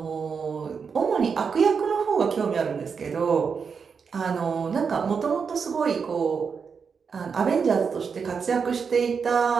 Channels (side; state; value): left; quieter; 5.9 dB